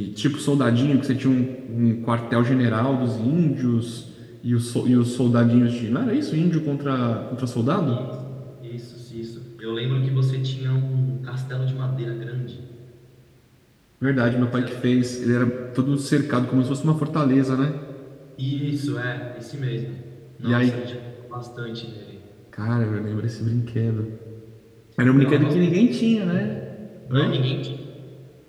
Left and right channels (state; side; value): identical; both; correlation 1.00